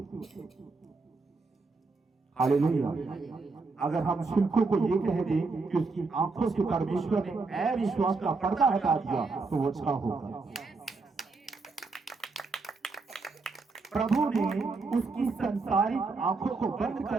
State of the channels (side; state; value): left; quieter; 4.0 dB